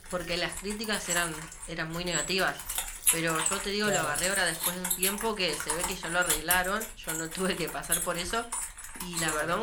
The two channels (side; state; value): both; identical; correlation 1.00